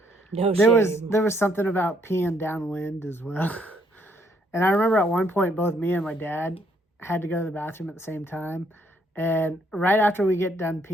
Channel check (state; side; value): normal; both; correlation 0.69